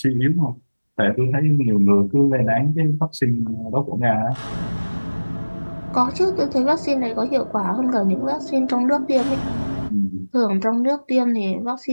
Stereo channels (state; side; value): inverted; both; correlation -1.00